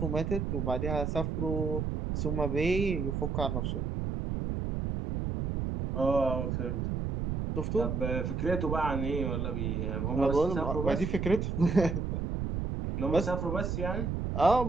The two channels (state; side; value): noise; right; rumble, 1 dB below the sound